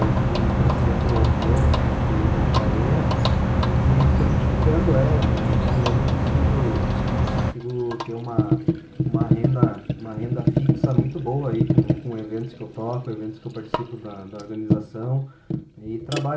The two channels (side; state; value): both; identical; correlation 1.00